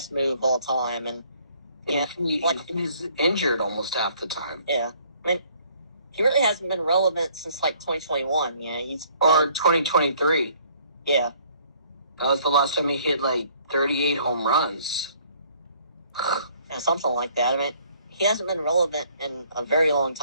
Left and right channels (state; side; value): inverted; both; correlation -0.61